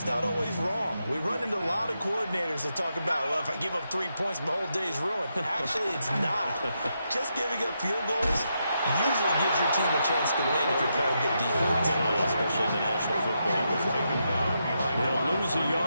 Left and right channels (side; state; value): both; inverted; correlation -0.83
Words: not always wrong. We run into a lot of coordinators that talk about, well, if I give up 3 points, my whole day's ruined. Actually, it's not. Just giving up field goals usually gives your team a chance to win if you're playing good defense. Especially in the National Football League. They'll lose a